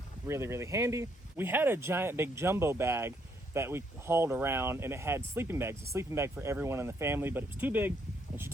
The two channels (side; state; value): both; normal; correlation 0.72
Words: really, really handy. We had a giant big jumbo bag that we hauled around, and it had sleeping bags, a sleeping bag for everyone in the family, but it was too big and she